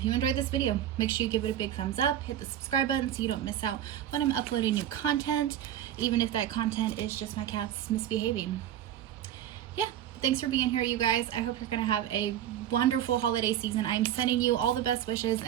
you enjoyed this video, make sure you give it a big thumbs up, hit the subscribe button so you don't miss out when I'm uploading new content, even if that content is just my cats misbehaving. Yeah, thanks for being here, you guys. I hope you're gonna have a wonderful holiday season. I'm sending you all the best wishes,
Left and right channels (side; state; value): left; quieter; 11.2 dB